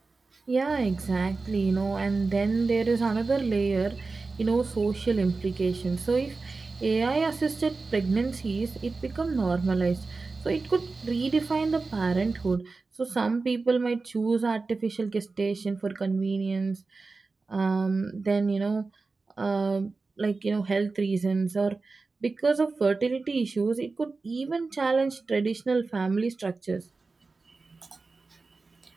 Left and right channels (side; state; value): left; quieter; 3.9 dB